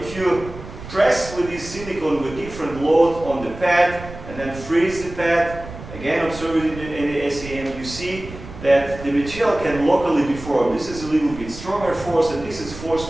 you press with this silicon with different load on the pad and then freeze the pad, again observe it in the SEM, you see that the material can locally deform. This is a little bit stronger force, and this is force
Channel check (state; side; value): noise; right; rumble, 13 dB below the sound